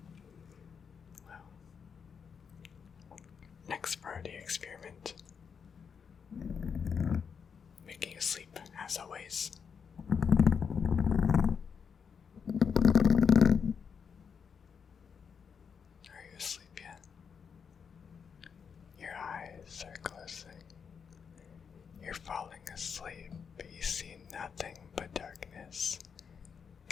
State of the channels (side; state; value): right; quieter; 6.5 dB